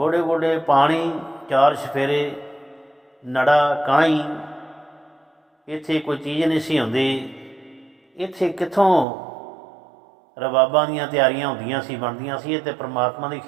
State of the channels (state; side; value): drops out; left; at 9.1 s